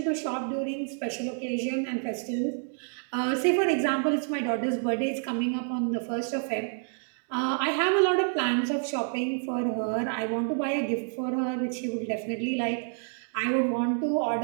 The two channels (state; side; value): silent; left; 59 dB below the other